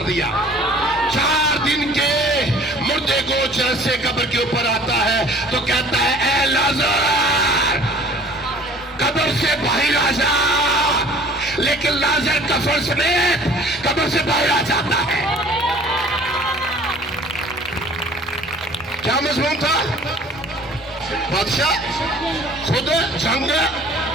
दिया? 4 दिन के मुर्दे को जैसे कब्र के ऊपर आता है तो कहता है, ए लाजर कब्र से बाहर आ जा। लेकिन लाजर कफन समेत कब्र से बाहर आ जाता है। क्या मजमून था? बादशाह खुद जंग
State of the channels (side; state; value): both; normal; correlation 0.50